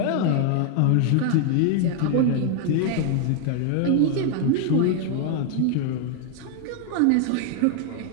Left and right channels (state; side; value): different; both; correlation 0.00